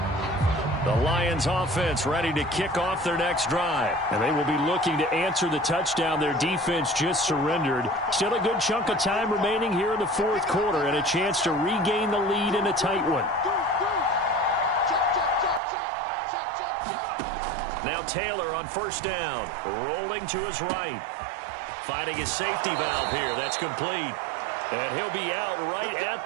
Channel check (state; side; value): drops out; left; at 15.6 s